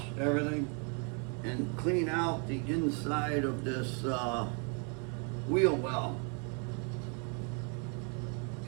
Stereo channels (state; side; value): quieter; left; 37.4 dB